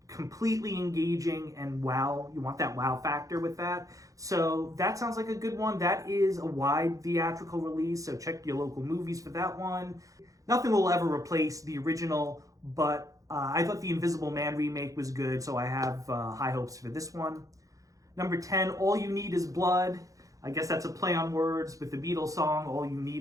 completely engaging and wow. You want that wow factor with that. So that sounds like a good one. That is a wide theatrical release, so check your local movies for that one. Nothing will ever replace the original, but I thought the Invisible Man remake was good, so I have high hopes for this one. Number 10, All You Need Is Blood. I guess that's a play on words with the Beatles song, All You Need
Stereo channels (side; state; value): left; late; 0.16 ms